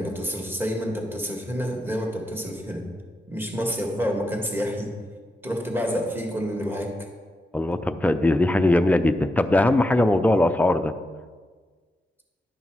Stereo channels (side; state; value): both; normal; correlation 0.86